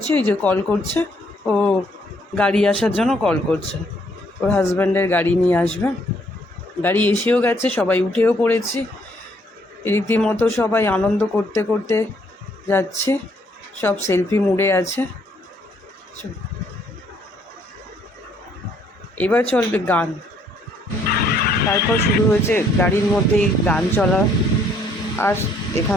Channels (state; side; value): normal; both; correlation 0.67